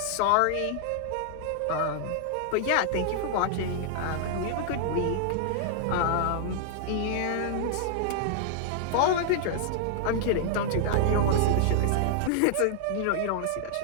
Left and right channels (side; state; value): both; different; correlation -0.01